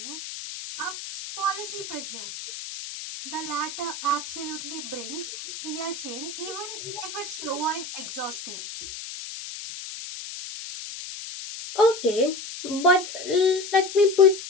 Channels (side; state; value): left; noise; hiss, 9 dB below the sound